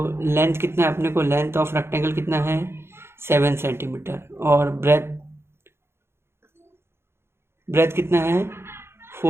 लेंथ कितना है अपने को, लेंथ ऑफ रेक्टेंगल कितना है 7 सेंटीमीटर और ब्रेथ कितना है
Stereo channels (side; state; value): left; late; 0.12 ms